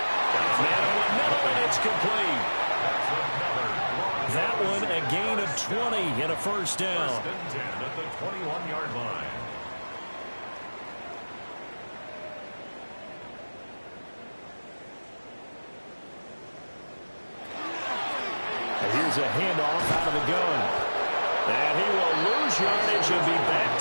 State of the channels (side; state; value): both; inverted; correlation -1.00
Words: Man in the middle, and it's complete. That one a gain of 20 and a first down. First and 10 at the 21-yard line. And here's a handoff out of the gun. And he will lose yardage and be